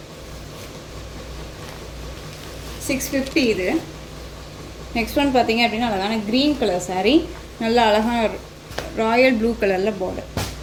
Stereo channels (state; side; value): identical; both; correlation 1.00